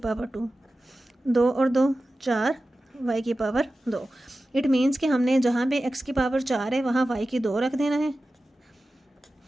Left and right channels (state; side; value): normal; both; correlation 0.95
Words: 2, 2 और 2 4, y की पावर 2। इट मीन्स कि हमने जहाँ पे x की पावर 4 है वहाँ y की 2 रख देना है।